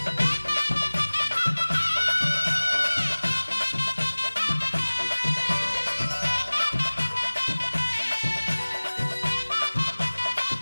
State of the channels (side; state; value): both; inverted; correlation -1.00